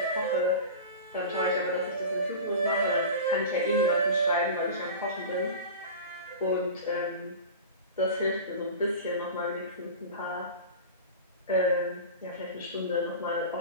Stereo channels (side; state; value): both; inverted; correlation -0.31